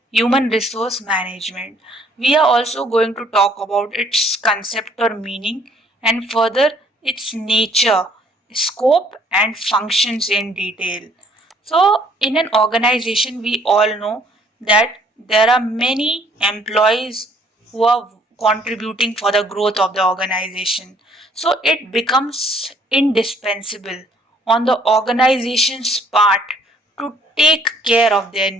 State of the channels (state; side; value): normal; both; correlation 0.62